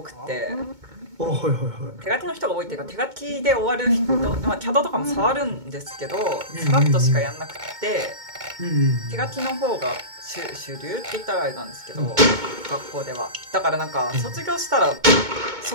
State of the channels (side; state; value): left; late; 2.2 ms